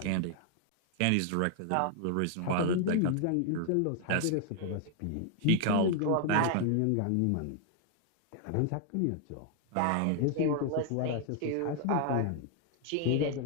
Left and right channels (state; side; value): different; both; correlation 0.00